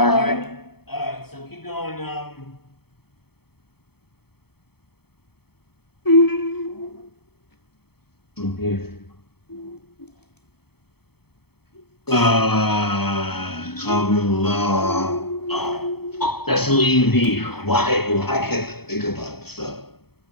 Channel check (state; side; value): late; right; 0.96 ms